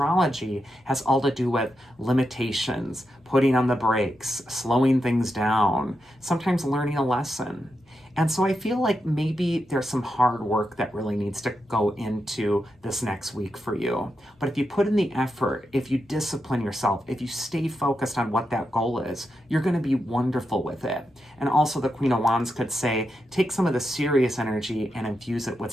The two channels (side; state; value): both; normal; correlation 0.86